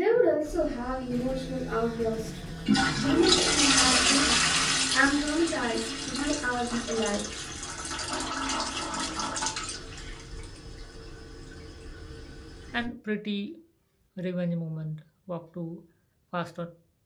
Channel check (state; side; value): identical; both; correlation 1.00